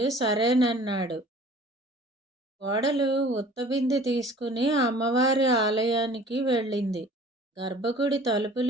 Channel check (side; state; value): both; normal; correlation 0.49